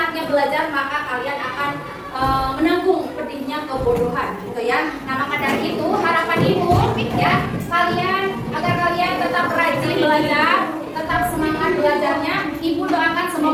Belajar maka kalian akan menanggung pedihnya kebodohan gitu ya. Nah, maka dari itu harapan Ibu ya, agar kalian tetap rajin belajar, tetap semangat belajarnya. Ibu doakan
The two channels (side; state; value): both; identical; correlation 1.00